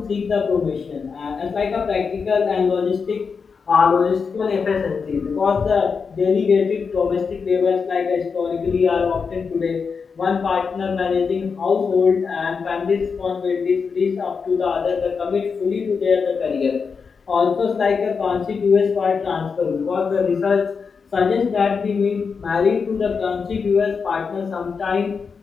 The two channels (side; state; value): right; quieter; 5.5 dB